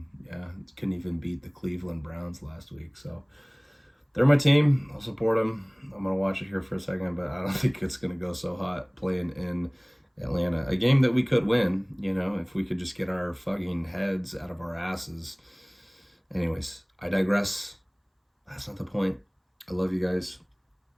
couldn't even beat the Cleveland Browns last week. So they're my team. I'll support them. I'm gonna watch it here for a second, but I don't think it's gonna go so hot playing in Atlanta, a game that we could win. If we could just get our fucking heads out of our asses. Anyways, I digress. That's not the point. I love you guys.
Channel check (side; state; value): both; identical; correlation 1.00